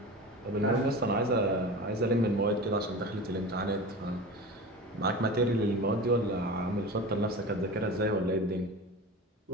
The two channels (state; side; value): normal; both; correlation 0.31